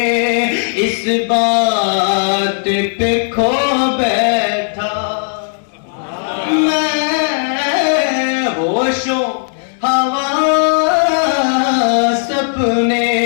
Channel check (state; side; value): silent; right; digital silence